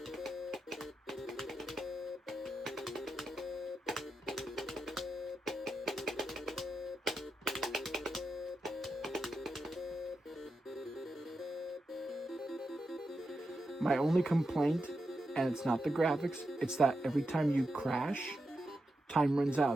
My only complaint, and it's not the graphics, it's that every time you crash, time runs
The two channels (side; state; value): both; normal; correlation 0.88